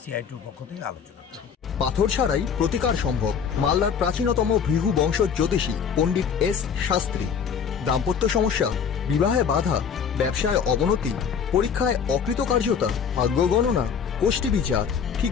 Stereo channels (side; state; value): right; quieter; 7.0 dB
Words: সিআই2-র পক্ষ থেকে আলোচনা করি। পাথর ছাড়াই প্রতিকার সম্ভব। মালদার প্রাচীনতম ভৃগু বংশ জ্যোতিষী পণ্ডিত এস শাস্ত্রী। দাম্পত্য সমস্যা, বিবাহে বাধা, ব্যবসায় অবনতি, পরীক্ষায় অকৃতকার্যতা, ভাগ্য গণনা, গোষ্ঠী বিচার,